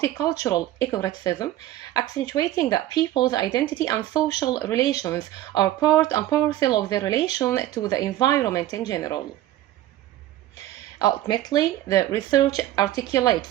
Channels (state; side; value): quieter; left; 13.9 dB